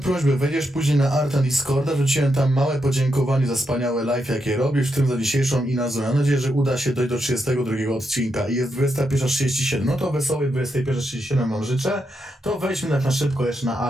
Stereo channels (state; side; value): normal; both; correlation 0.83